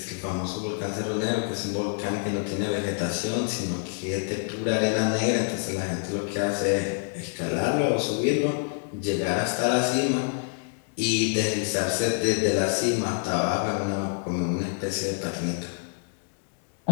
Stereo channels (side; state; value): right; silent; 59 dB below the other